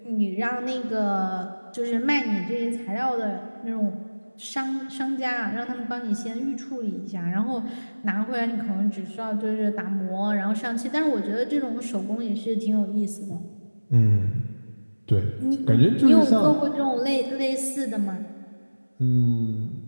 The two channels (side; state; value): both; inverted; correlation -1.00